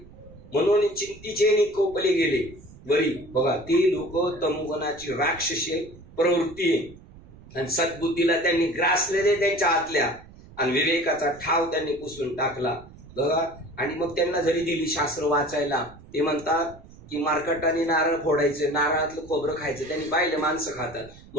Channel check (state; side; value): noise; right; rumble, 21 dB below the sound